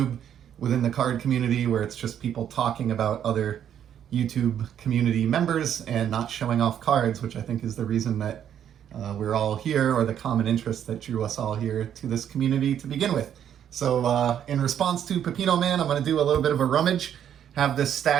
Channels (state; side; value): quieter; left; 9.6 dB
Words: within the card community where it's just people talking about other YouTube community members and not showing off cards, which I think is the reason that we're all here, or the common interest that drew us all here to this community to begin with. So in response to Pepino Man, I'm going to do a little bit of a rummage. Have this